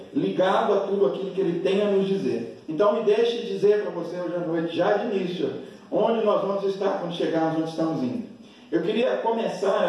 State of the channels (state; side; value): identical; both; correlation 1.00